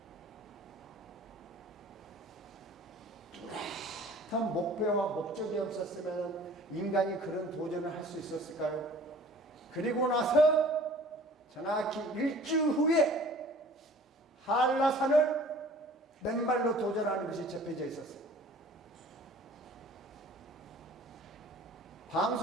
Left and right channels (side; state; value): both; normal; correlation 0.49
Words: 뚜렷한 목표와 목적이 없었으면 인간이 그런 도전을 할 수 있었을까요? 그리고 나서 정확히 일주 후에 한라산을 맨발로 도전하는 것이 접해져 있었어요.